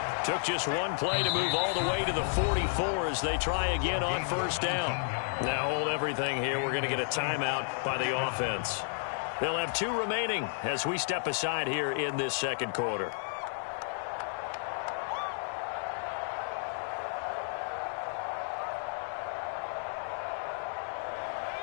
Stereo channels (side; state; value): right; silent; digital silence